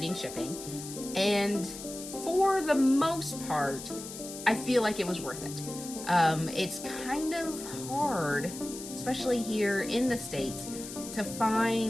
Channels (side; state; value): left; noise; hiss, 11 dB below the sound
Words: shipping, and for the most part, I feel like it was worth it. It's kind of hard, especially here in the States, to